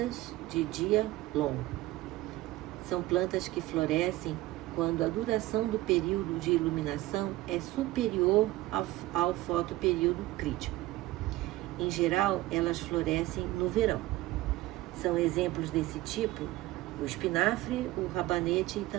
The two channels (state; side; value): quieter; left; 17.4 dB